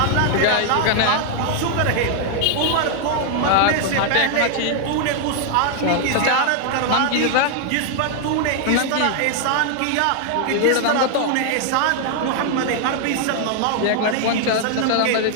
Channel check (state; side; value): different; both; correlation 0.00